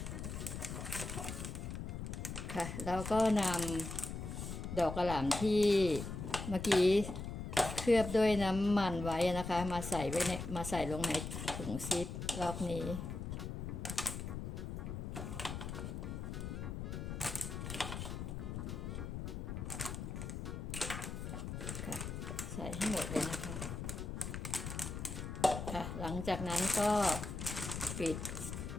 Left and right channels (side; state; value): left; noise; rumble, 5 dB below the sound